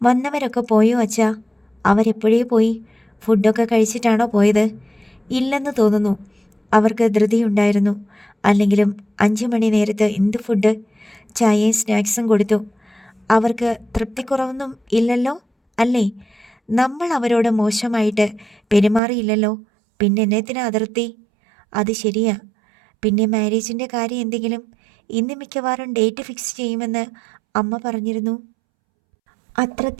പോയോ അച്ഛാ? അവരെപ്പോഴേ പോയി. ഫുഡൊക്കെ കഴിച്ചിട്ടാണോ പോയത്? ഇല്ലെന്ന് തോന്നുന്നു. അവർക്ക് ധൃതിയുണ്ടായിരുന്നു. അല്ലെങ്കിലും 5 മണി നേരത്ത് എന്ത് ഫുഡ്? ചായയും സ്നാക്സും കൊടുത്തു. അവർക്ക് തൃപ്തിക്കുറവൊന്നും ഇല്ലല്ലോ അല്ലേ? നമ്മൾ അവരോട് മോശമായിട്ട് പെരുമാറിയില്ലല്ലോ, പിന്നെ എന്നത്തിനാ അതിർത്തി? അത് ശരിയാ. പിന്നെ മാരേജിൻ്റെ കാര്യം എന്തെങ്കിലും? ഇന്ന് മിക്കവാറും ഡേറ്റ് ഫിക്സ് ചെയ്യുമെന്ന് അമ്മ പറഞ്ഞിരുന്നു. അത്ര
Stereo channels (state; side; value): drops out; left; at 19.0 s